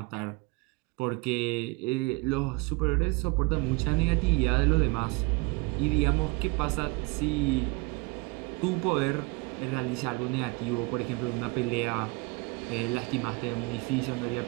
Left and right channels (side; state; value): left; quieter; 26.7 dB